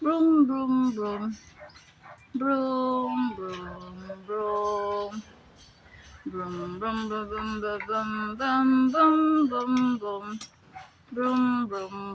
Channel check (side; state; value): both; identical; correlation 1.00